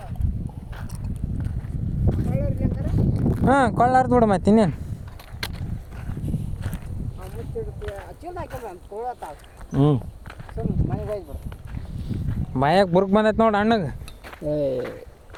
ಹಾಂ ಕೊಳ್ಳಾರ್ದು ಬಿಡು ಮತ್ತೆ ಇನ್ನೇನು. ಬಾಯಾಗ ಬುರ್ಕ್ ಬಂದೈತೆ ನೋಡಿ ಅಣ್ಣಗೆ.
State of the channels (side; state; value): both; identical; correlation 1.00